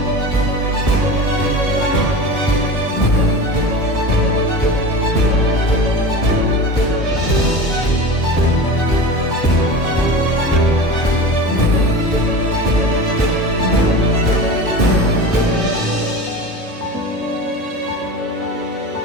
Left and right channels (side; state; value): both; normal; correlation 0.30